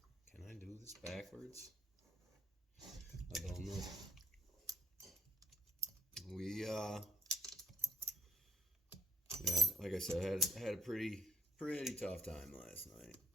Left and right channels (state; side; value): normal; both; correlation 0.63